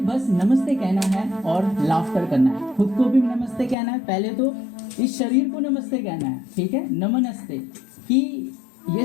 बस नमस्ते कहना है और लाफ्टर करना है। खुद को भी नमस्ते कहना है, पहले तो इस शरीर को नमस्ते कहना है, ठीक है। नमस्ते कि ये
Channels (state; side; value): drops out; right; at 3.8 s